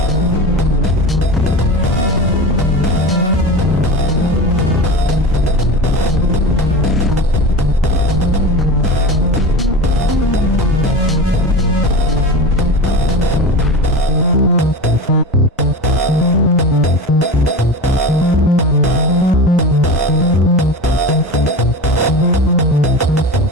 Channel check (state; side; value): normal; both; correlation 0.29